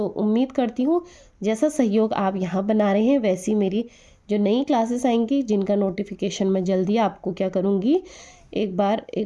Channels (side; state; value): both; identical; correlation 1.00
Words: उम्मीद करती हूँ जैसा सहयोग आप यहाँ बना रहे हैं वैसी मेरी जो नई क्लासेस आएंगी जिनका नोटिफिकेशन मैं जल्दी आपको क्या करूँगी, एक बार